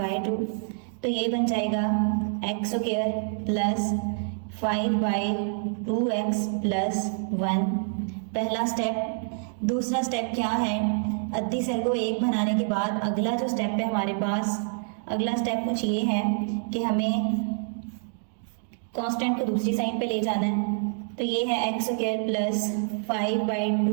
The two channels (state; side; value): silent; left; 60 dB below the other